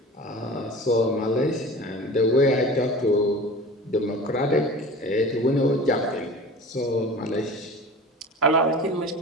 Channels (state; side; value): normal; both; correlation 0.37